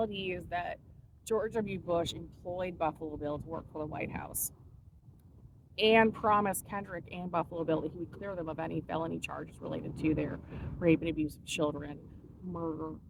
is that George W. Bush employed Buffalo Bill to work for the White House and promised Kendrick and Buffalo Bill that he would clear them of any felony charges related to their rape and abuse of children, murder,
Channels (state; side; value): identical; both; correlation 1.00